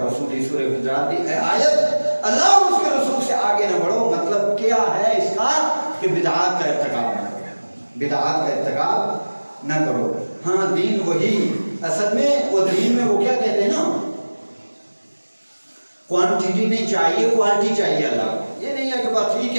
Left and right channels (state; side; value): inverted; both; correlation -1.00